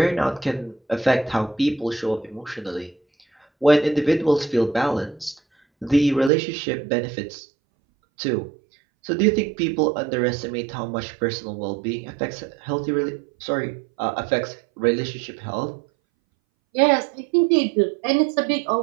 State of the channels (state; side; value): drops out; left; at 6.3 s